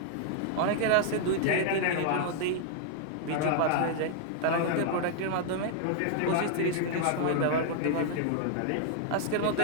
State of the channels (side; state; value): both; different; correlation 0.00